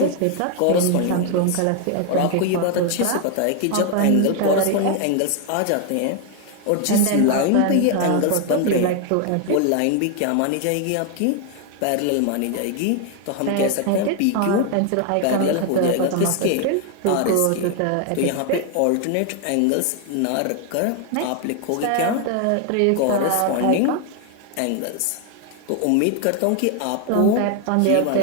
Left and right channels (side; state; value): both; different; correlation 0.01